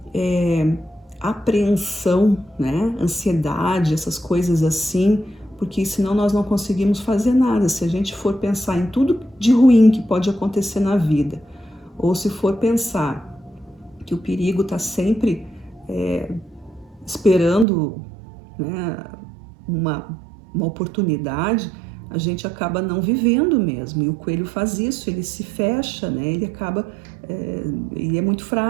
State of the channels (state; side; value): drops out; left; at 17.7 s